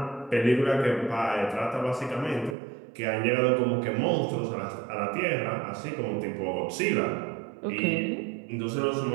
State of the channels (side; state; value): left; drops out; at 2.6 s